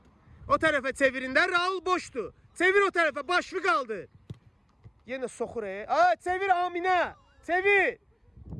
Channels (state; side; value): identical; both; correlation 1.00